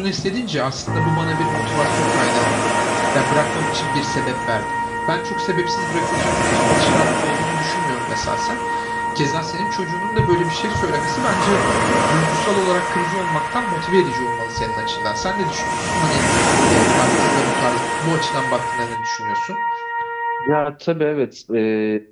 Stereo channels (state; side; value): identical; both; correlation 1.00